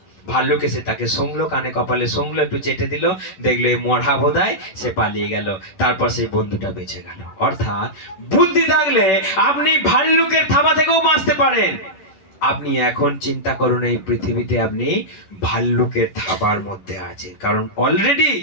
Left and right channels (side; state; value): right; late; 10 ms